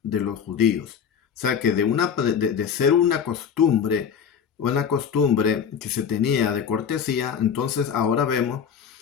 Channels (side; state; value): right; quieter; 7.6 dB